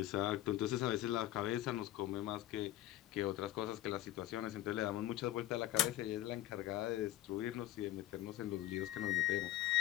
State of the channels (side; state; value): right; quieter; 14.6 dB